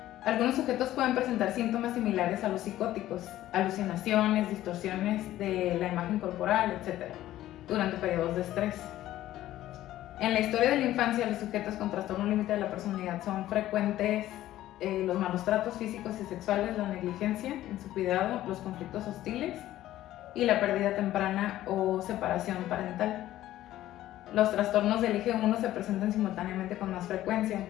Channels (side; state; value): right; quieter; 14.1 dB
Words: Algunos sujetos pueden presentar síntomas similares a los psicóticos, alucinaciones, distorsiones de la imagen corporal, etc., durante periodos de estrés. En la historia de la infancia, los sujetos con trastorno límite de la personalidad son frecuentes los malos tratos físicos y sexuales, la negligencia en su cuidado, los conflictos hostiles y la pérdida temprana o separación parental. Los trastornos del eje 1 se presentan simultáneamente con más frecuencia,